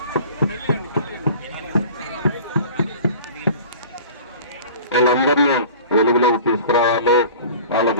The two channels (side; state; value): both; inverted; correlation -0.43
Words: వాళ్ళందరినీ వెలుగులోకి తీసుకురావాలి,